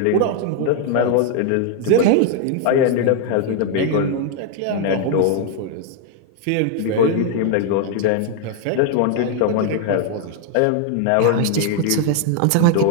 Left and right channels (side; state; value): both; different; correlation 0.00